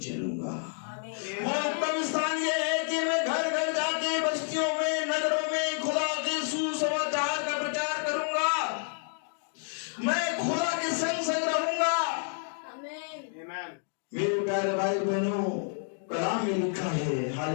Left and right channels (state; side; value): silent; right; 58 dB below the other